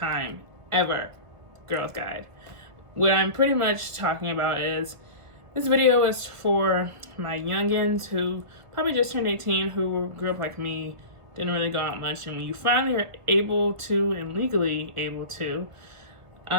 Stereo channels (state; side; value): late; left; 1.7 ms